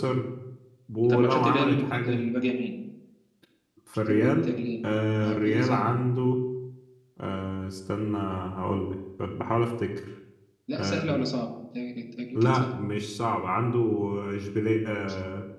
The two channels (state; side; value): identical; both; correlation 1.00